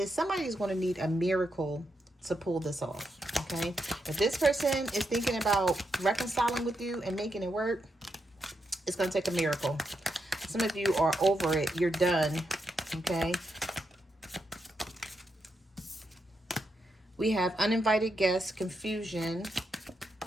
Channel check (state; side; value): normal; both; correlation 0.83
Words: somebody is going to need a miracle to pull this off. Okay, if this person is thinking about reconciling with you and making it work, it's going to take a miracle. Some of you are over it. You're done. Okay. We have uninvited guests, confusion,